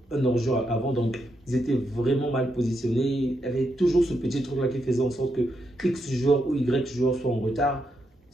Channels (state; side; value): normal; both; correlation 0.81